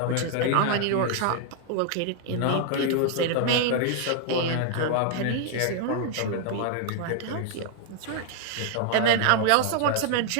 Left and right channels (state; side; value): different; both; correlation 0.00